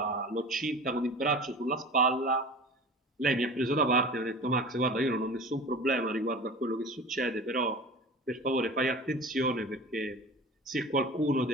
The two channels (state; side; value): normal; both; correlation 0.37